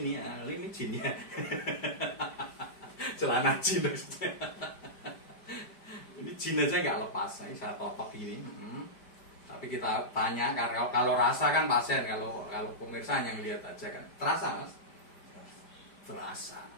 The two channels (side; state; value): right; late; 5.0 ms